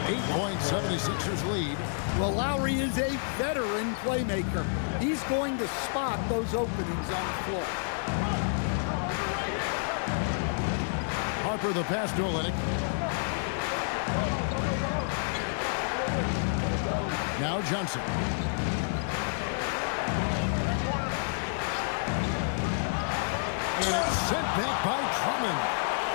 8-point 76ers lead. Well, Lowry is a veteran playmaker. He's going to spot those openings on the floor. Harper the pass to Olynyk. Now Johnson. And it's sent back by Drummond.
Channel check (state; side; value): silent; right; digital silence